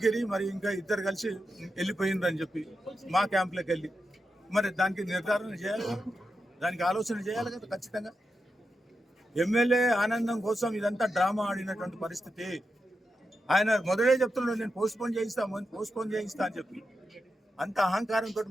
మరి ఇంకా ఇద్దరు కలిసి వెళ్ళిపోయిందని చెప్పి మా క్యాంప్లోకి వెళ్ళి, మరి దానికి నిర్ధారణ చేయాలి, దానికి ఆలోచన చేయాలి కదా ఖచ్చితంగా. ఎమ్మెల్యే ఆనందం కోసం ఇదంతా డ్రామా ఆడినటువంటి పరిస్థితి. ఆయన మొదలే చెప్తున్నాడు, నేను పోస్ట్పోన్ చేయిస్తా అని చెప్పి. అంత అహంకారంతో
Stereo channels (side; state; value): both; normal; correlation 0.88